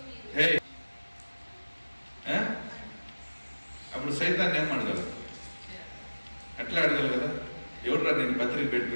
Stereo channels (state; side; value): inverted; both; correlation -1.00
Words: హే, అప్పుడు సైతాన్ని ఏం అడగలరు? ఎట్లా అడగలు కదా? ఎవరురా నేను పత్రిక పెట్టి